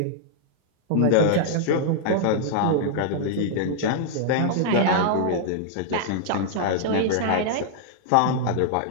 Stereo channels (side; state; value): both; different; correlation -0.01